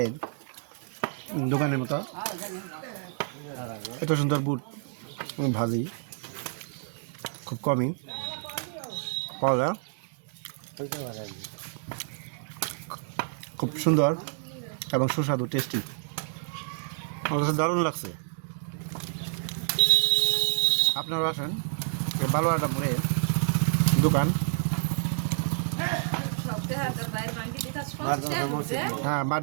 দোকানের মতো এত সুন্দর বুট ভাজি খুব কমই পাওয়া যায়। খুব সুন্দর এবং সুস্বাদু টেস্টি, আমার কাছে দারুণ লাগছে। আপনারা আসেন, বালুয়াটাপুরে দোকান, হ্যাঁ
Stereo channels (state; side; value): silent; left; digital silence